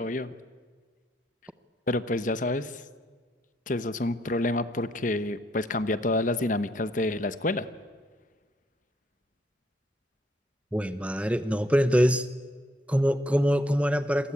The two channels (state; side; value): normal; both; correlation 0.71